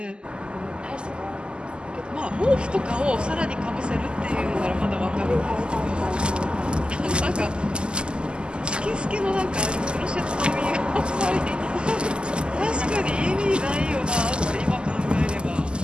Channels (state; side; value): late; left; 0.049 ms